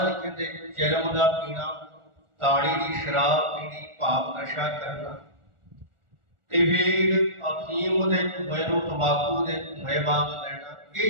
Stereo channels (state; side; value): late; left; 1.4 ms